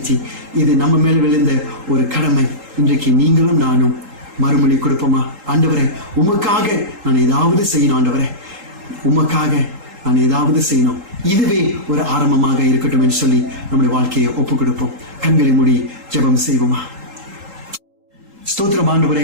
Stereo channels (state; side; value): late; left; 3.8 ms